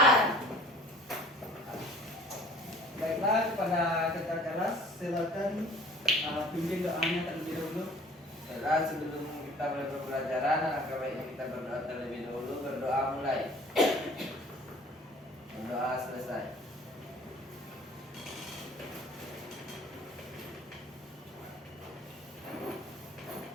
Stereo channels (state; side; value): normal; both; correlation 0.50